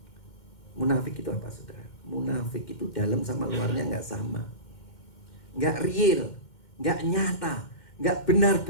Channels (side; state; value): right; late; 2.1 ms